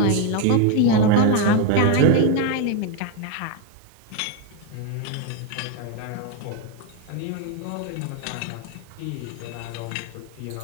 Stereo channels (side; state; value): both; different; correlation 0.02